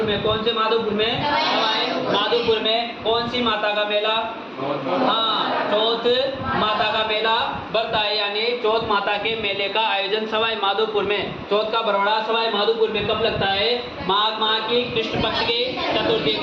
में। कौन से माधोपुर में? सवाई माधोपुर में। कौन सी माता का मेला? हाँ, चौथ माता का मेला बढ़ता है। यानी चौथ माता के मेले का आयोजन सवाई माधोपुर में, चौथ का बरवाड़ा सवाई माधोपुर में कब लगता है? माघ माह की कृष्ण पक्ष की चतुर्थी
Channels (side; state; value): both; identical; correlation 1.00